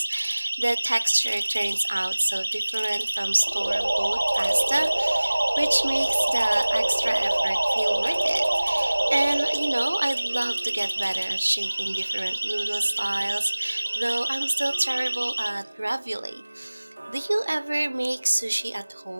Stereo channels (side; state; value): both; inverted; correlation -1.00